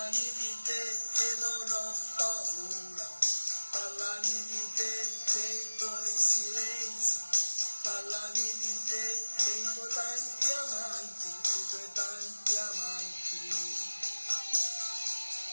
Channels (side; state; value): both; inverted; correlation -1.00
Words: di te che non ho paura, parlami di te dei tuoi silenzi, parlami di te dei tuoi tanti amanti, dei tuoi tanti amanti.